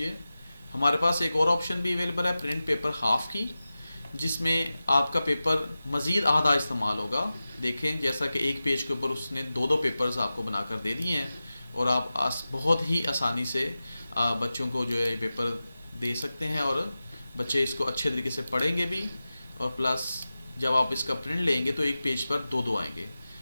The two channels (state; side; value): inverted; both; correlation -0.95